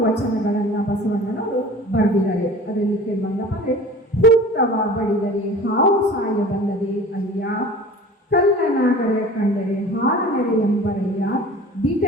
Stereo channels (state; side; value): normal; both; correlation 0.41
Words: ವಚನಗಳನ್ನು ಬಸವಣ್ಣನವರು ಬರೆದಿದ್ದಾರೆ. ಅದರಲ್ಲಿ ಕೆಲವೊಂದಪ್ಪ ಅಂದರೆ, ಹುತ್ತವ ಬಡಿದರೆ ಹಾವು ಸಾಯಬಲ್ಲದೆ ಅಯ್ಯ, ಕಲ್ಲನಾಗರ ಕಂಡರೆ ಹಾರನೆರೆ ಎಂಬರಯ್ಯ,